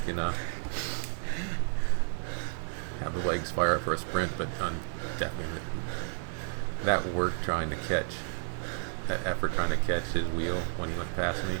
have the legs fire up for a sprint, but definitely that work trying to catch, that effort trying to catch his wheel when he went past me,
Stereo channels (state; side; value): silent; left; 57 dB below the other